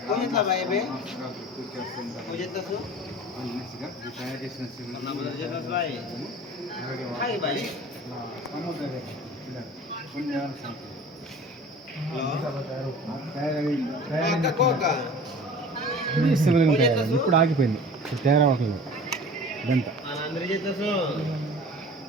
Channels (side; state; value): both; normal; correlation 0.41